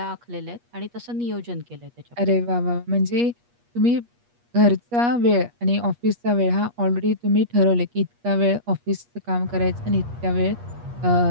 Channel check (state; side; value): late; left; 8.4 ms